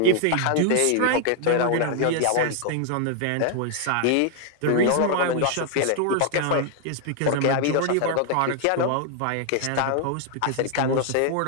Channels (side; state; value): both; different; correlation 0.00